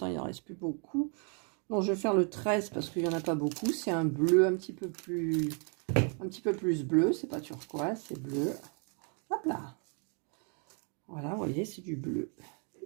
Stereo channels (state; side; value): quieter; left; 39.7 dB